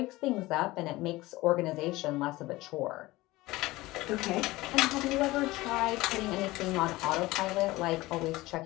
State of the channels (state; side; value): quieter; right; 19.4 dB